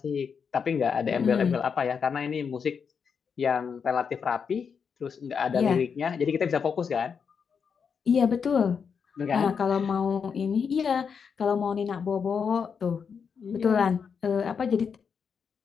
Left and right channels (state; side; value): quieter; right; 6.4 dB